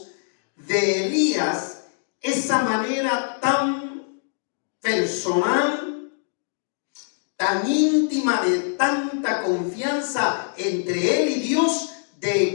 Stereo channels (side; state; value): right; silent; digital silence